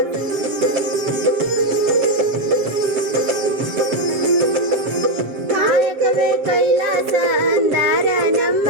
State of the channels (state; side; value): late; left; 7.4 ms